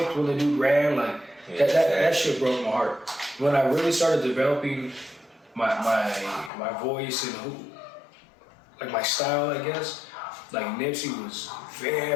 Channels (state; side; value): drops out; right; at 6.5 s